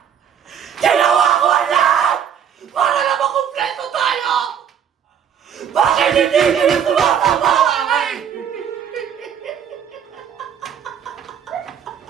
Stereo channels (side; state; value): left; quieter; 8.4 dB